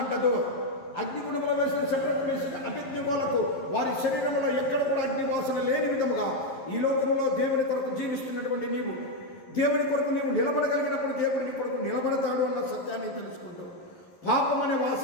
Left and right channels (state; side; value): late; right; 11 ms